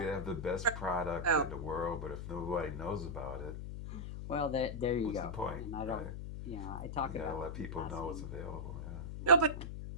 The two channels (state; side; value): noise; left; hum, 7 dB below the sound